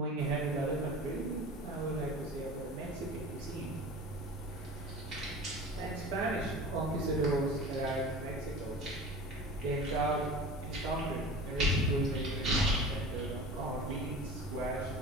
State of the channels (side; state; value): both; normal; correlation 0.37